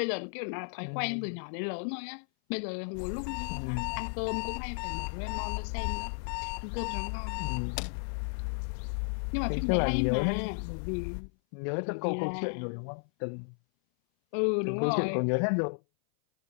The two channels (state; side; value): silent; right; 56 dB below the other